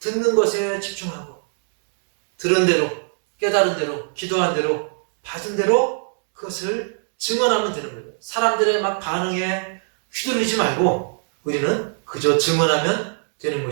것에 집중하고, 들은 대로, 깨달은 대로, 기도한 대로, 받은 대로 그것을 증언하면 되는 거예요. 사람들의 막 반응에 휘둘리지 말고 우리는 그저 증언하면 되는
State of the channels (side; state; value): left; silent; digital silence